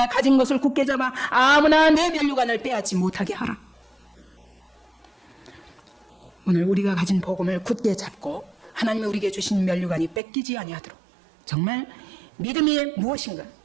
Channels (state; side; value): drops out; left; at 10.2 s